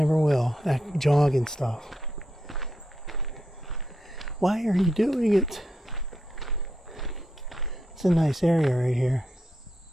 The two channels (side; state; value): both; normal; correlation 0.82